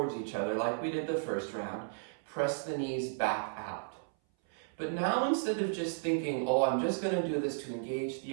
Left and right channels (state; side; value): silent; left; 55 dB below the other